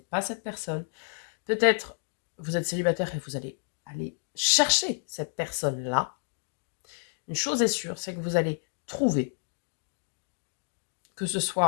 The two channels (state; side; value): silent; right; digital silence